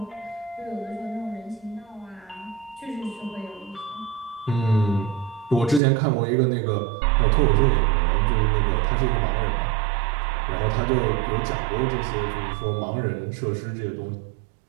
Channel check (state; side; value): drops out; left; at 5.8 s